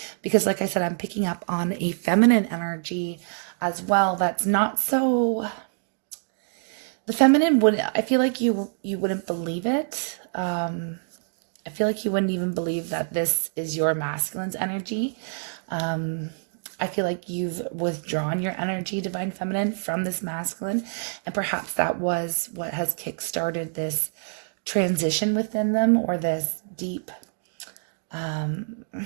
because like I said, I'm picking up on a feminine energy as well. That's not so, the feminine wouldn't, I feel like you wouldn't believe it. I feel like you wouldn't even believe that this is your masculine's energy. I feel like you've withdrawn your energy, Divine Feminine, from this masculine. And perhaps that was what has kickstarted this transition within them, or this deep,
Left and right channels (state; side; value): silent; left; digital silence